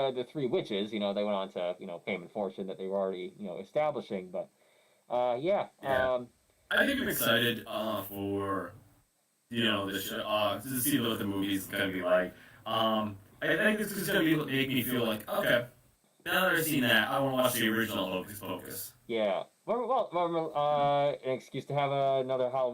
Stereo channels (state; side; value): identical; both; correlation 1.00